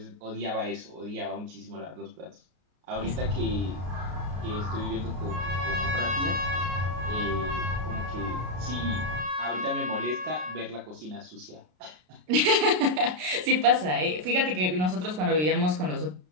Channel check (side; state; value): left; late; 33 ms